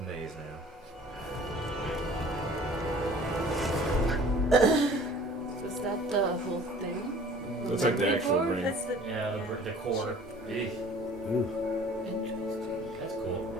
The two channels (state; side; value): normal; both; correlation 0.49